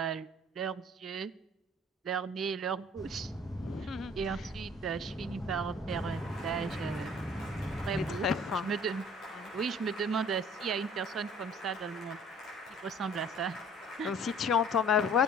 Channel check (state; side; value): normal; both; correlation 0.52